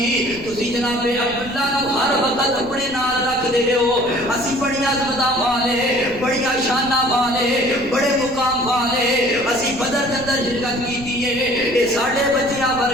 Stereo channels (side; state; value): left; noise; rumble, 18 dB below the sound